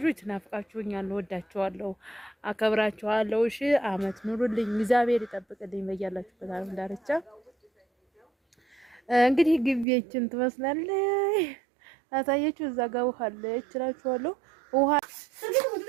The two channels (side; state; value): left; drops out; at 9.9 s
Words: ናፍቃችሁኛል። ወዳችኋለሁ፣ አከብራችኋለሁ። እሺ አመት ኑሩልኝ፣ እግዚአብሔር ይጠብቅልኝ በያላችሁበት ዓለም ዳርቻ። እንግዲህ ግቢያችን ትመስላለች። ታታያችሁ እዛ ጋር ውሃ አለ እችላችኋለሁ። ውሃ